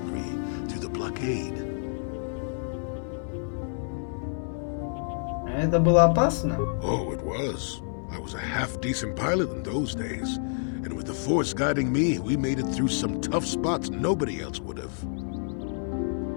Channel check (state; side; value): silent; right; 59 dB below the other